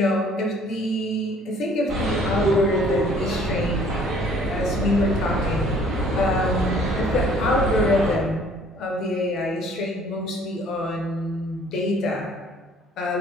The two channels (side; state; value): both; normal; correlation 0.56